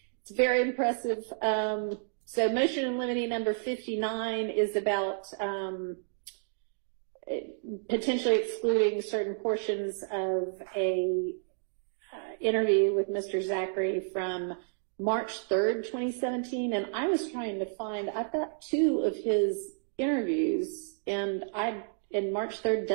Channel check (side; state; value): left; silent; digital silence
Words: It's very impressive. So motion in limine number 59 is about potentially excluding certain portions of a interview with Mr. Zachary from March 3rd, 2017. And I was trying to find, I've got 2 of his interviews, and March 3rd